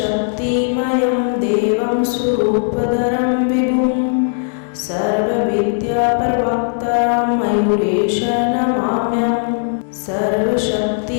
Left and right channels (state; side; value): silent; right; 63 dB below the other